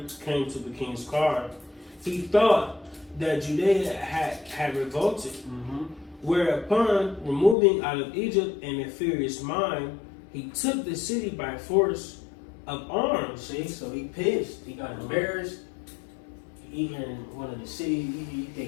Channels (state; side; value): drops out; right; at 7.6 s